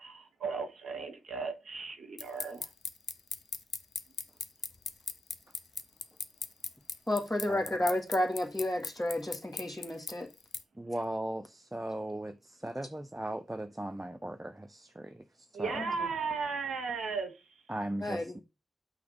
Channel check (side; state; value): both; normal; correlation 0.83